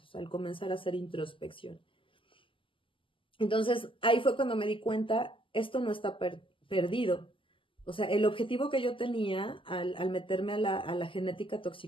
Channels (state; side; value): late; right; 0.25 ms